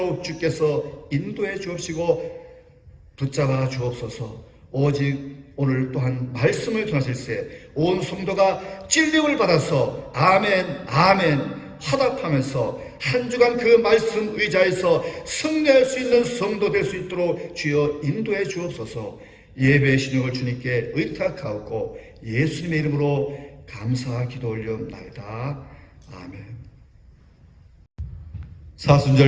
주께서 인도해 주옵시고 붙잡아 주옵소서. 오직 오늘 또한 말씀을 전하실세 온 성도가 진리를 받아서 아멘 아멘 화답하면서 한 주간 그 말씀 의자에서 승리할 수 있는 성도 될 수 있도록 주여 인도해 주옵소서. 예배의 신용을 주님께 의탁하옵고 예수님의 이름으로 감사 기도 올려옵나이다. 아멘.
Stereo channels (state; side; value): identical; both; correlation 1.00